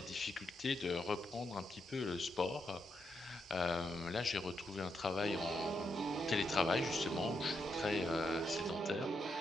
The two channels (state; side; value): normal; both; correlation 0.81